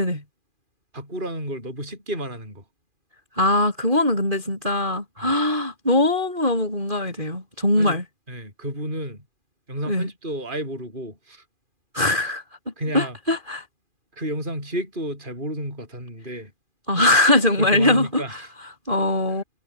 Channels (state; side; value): late; left; 2.4 ms